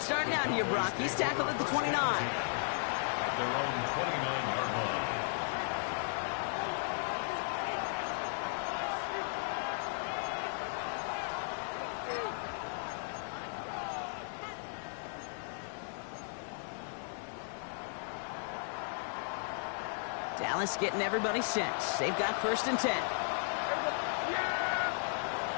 out here, Brock. He's tackled at the 29. Their own 29-yard line. Dallas getting everybody set. They've got 1st and 10.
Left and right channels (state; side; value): silent; right; digital silence